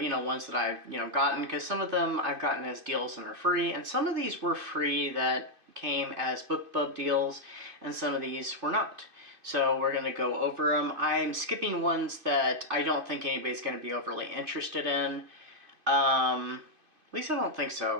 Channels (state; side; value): late; left; 2.5 ms